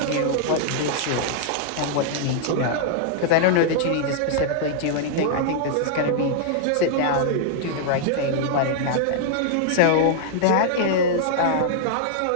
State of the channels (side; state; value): both; different; correlation -0.01